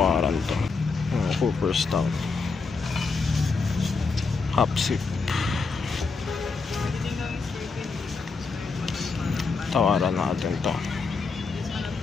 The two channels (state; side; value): quieter; right; 4.4 dB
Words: to. Cooperstown Hapsip. Tawaran natin to.